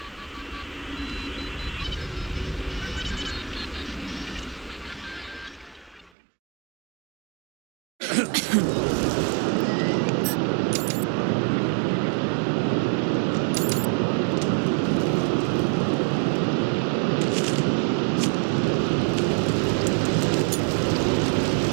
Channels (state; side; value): drops out; left; at 6.1 s